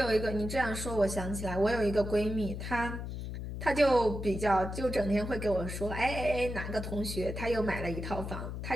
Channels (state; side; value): noise; left; hum, 6 dB below the sound